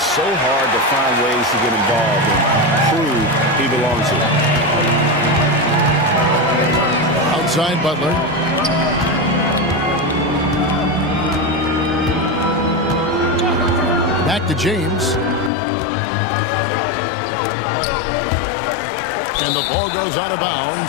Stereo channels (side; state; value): right; drops out; at 15.5 s